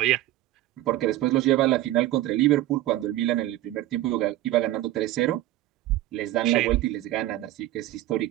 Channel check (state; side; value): quieter; left; 15.2 dB